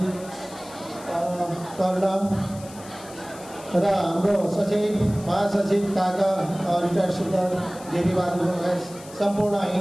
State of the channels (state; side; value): noise; left; hiss, 19 dB below the sound